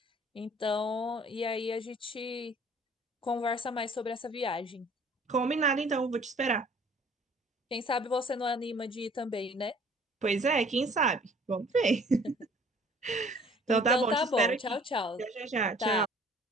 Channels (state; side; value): normal; both; correlation 0.54